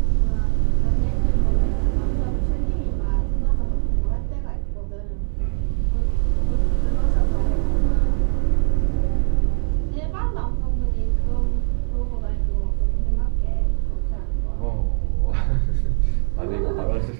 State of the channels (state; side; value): silent; left; 65 dB below the other